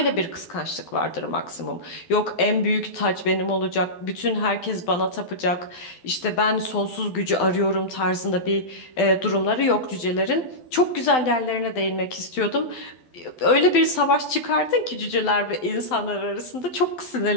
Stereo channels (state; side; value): late; right; 12 ms